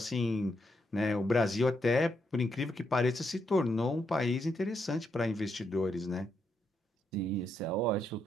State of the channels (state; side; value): normal; both; correlation 0.79